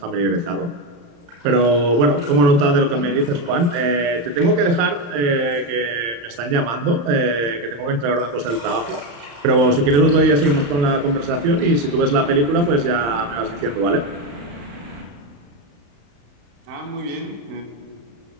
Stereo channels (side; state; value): left; late; 35 ms